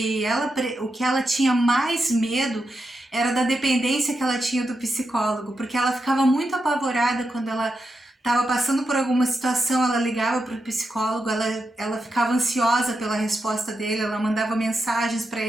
ela tinha mais medo era da dependência que ela tinha do psicólogo, porque ela ficava muito apavorada quando ela estava passando por alguma situação, ela ligava para o psicólogo, ela ficava ansiosa pela resposta dele, ela mandava mensagens para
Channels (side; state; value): both; normal; correlation 0.87